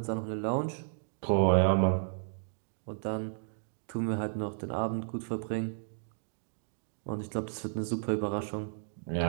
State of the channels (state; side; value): silent; left; digital silence